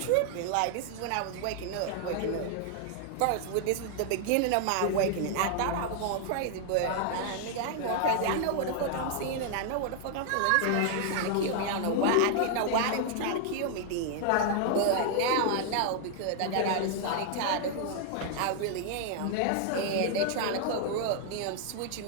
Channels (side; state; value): both; different; correlation 0.00